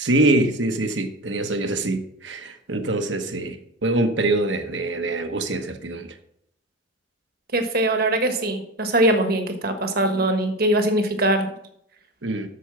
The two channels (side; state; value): both; normal; correlation 0.25